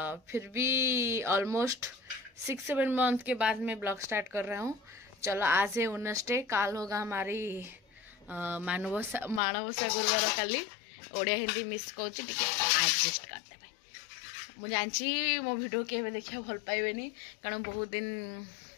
फिर भी ऑलमोस्ट 6-7 मंथ के बाद मैं ब्लॉग स्टार्ट कर रहा हूँ. चलो, आज है वेडनेसडे, काल होगा हमारी माणवसा गुरुवार काली. ओडिया हिंदी मिस कौच एडजस्ट करते भाई. मुझे जानची मो वीडियो के देखा भल पाइबेनी कारण बहुत दिन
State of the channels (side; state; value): right; drops out; at 9.4 s